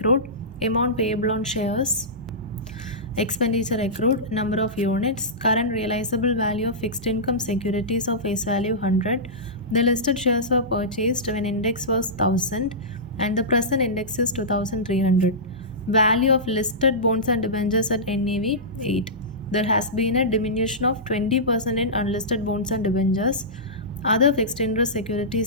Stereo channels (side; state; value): both; normal; correlation -0.17